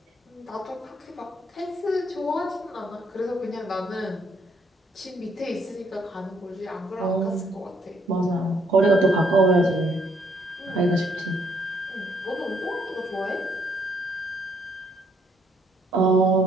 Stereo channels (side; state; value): both; normal; correlation 0.70